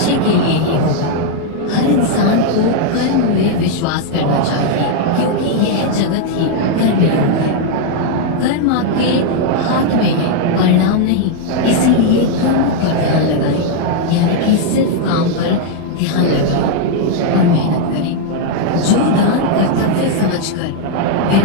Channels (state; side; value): different; both; correlation 0.00